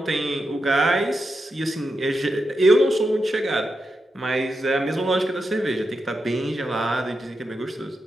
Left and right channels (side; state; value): both; normal; correlation 0.87